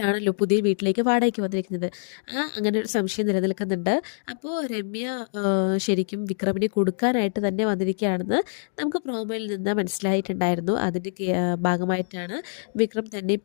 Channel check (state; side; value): silent; right; digital silence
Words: പുതിയ വീട്ടിലേക്ക് വാടകയ്ക്ക് വന്നിരിക്കുന്നത്. അങ്ങനെ ഒരു സംശയം നിലനിൽക്കുന്നുണ്ട്. അപ്പോൾ രമ്യ ശരിക്കും വിക്രമിനെ കൊടുക്കാനായിട്ട് തന്നെ വന്നിരിക്കുകയാണെന്ന് നമുക്ക് പ്രോമോയിൽ നിന്ന് മനസ്സിലായിട്ടുണ്ടായിരുന്നു. അതിൻ്റെ ഭാഗമായിട്ടാണ് വിക്രം തന്നെ